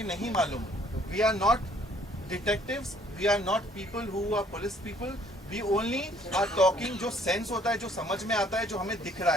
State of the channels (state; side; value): normal; both; correlation 0.61